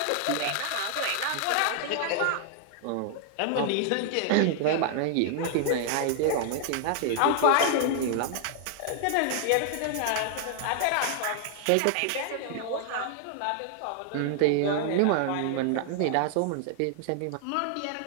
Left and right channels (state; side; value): different; both; correlation 0.00